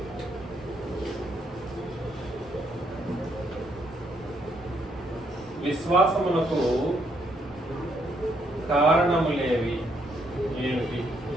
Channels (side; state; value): both; normal; correlation 0.73